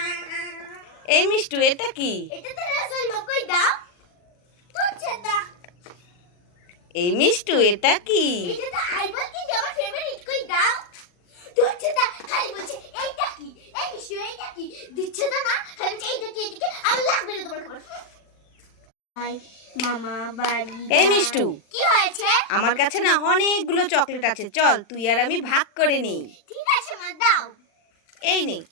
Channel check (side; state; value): right; late; 40 ms